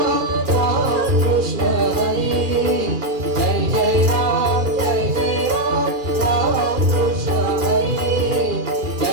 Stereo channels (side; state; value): left; late; 2.4 ms